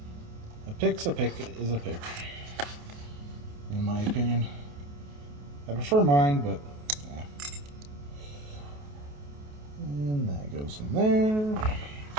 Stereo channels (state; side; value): late; left; 28 ms